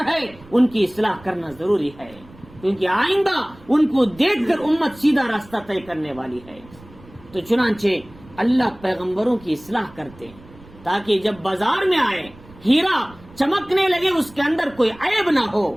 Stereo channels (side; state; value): right; noise; rumble, 23 dB below the sound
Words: ہے، ان کی اصلاح کرنا ضروری ہے، کیونکہ آئندہ ان کو دیکھ کر امت سیدھا راستہ طے کرنے والی ہے۔ تو چنانچہ اللہ پیغمبروں کی اصلاح کرتے ہیں تاکہ جب بازار میں آئے، ہیرا چمکنے لگے، اس کے اندر کوئی عیب نہ ہو،